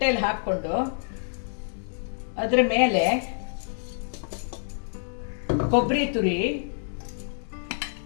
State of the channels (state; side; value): silent; right; 60 dB below the other